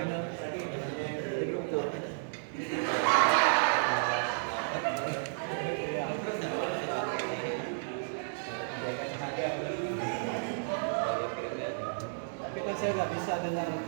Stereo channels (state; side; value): silent; left; digital silence